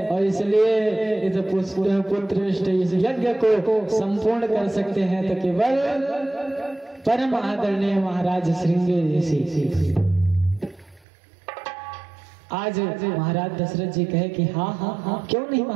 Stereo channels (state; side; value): drops out; left; at 11.0 s